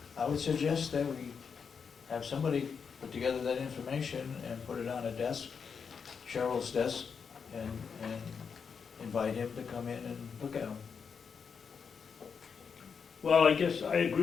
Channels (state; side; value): quieter; right; 6.2 dB